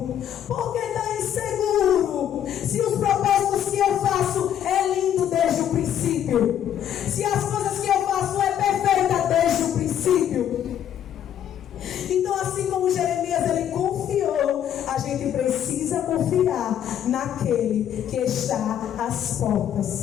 porque está inseguro, se os propósitos que eu faço é lindo desde o princípio, se as coisas que eu faço é perfeita desde o princípio. Então, assim como Jeremias ele confiou, a gente precisa confiar naquele que está às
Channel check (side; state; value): right; quieter; 10.1 dB